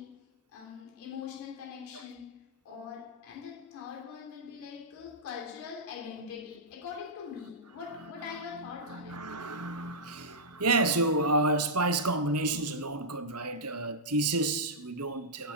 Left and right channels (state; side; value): normal; both; correlation -0.11